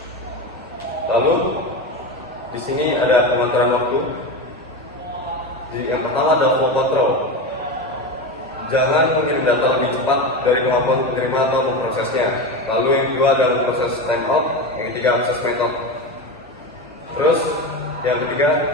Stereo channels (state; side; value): normal; both; correlation 0.21